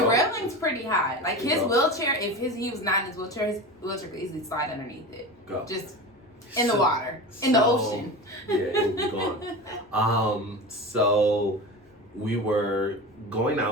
railing's pretty high. Like his wheelchair, if he was not in his wheelchair could easily slide underneath it. Just in the water, in the ocean. Yeah, it would be gone. So we were going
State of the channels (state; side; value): normal; both; correlation 0.28